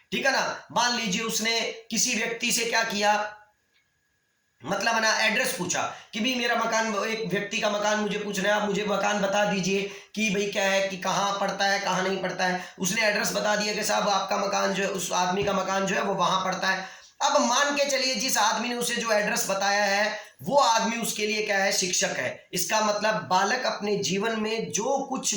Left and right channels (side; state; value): both; identical; correlation 1.00